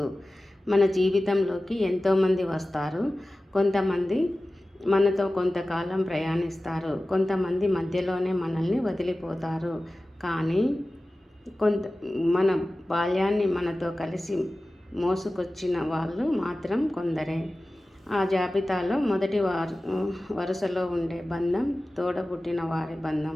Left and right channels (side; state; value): both; normal; correlation 0.96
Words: మన జీవితంలోకి ఎంతోమంది వస్తారు. కొంతమంది మనతో కొంతకాలం ప్రయాణిస్తారు, కొంతమంది మధ్యలోనే మనల్ని వదిలిపోతారు. కానీ కొంత మన బాల్యాన్ని మనతో కలిసి మోసుకొచ్చిన వాళ్ళు మాత్రం కొందరే. ఆ జాబితాలో మొదటి వరుసలో ఉండే బంధం తోడబుట్టిన వారి బంధం.